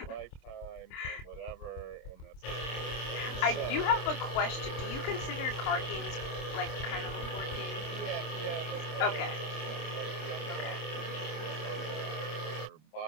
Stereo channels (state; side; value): late; right; 26 ms